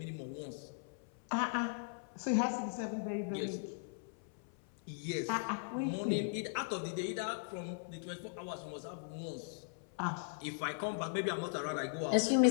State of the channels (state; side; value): silent; right; 52 dB below the other